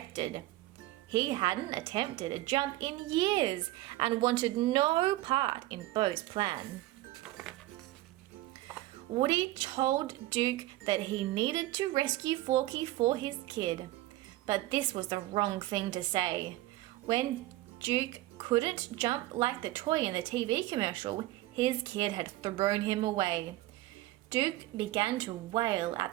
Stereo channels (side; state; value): left; quieter; 17.2 dB